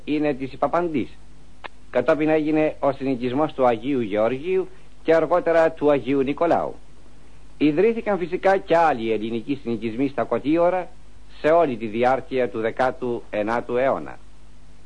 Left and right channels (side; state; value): both; identical; correlation 1.00